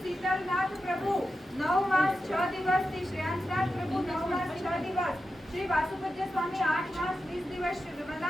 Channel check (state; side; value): normal; both; correlation 0.90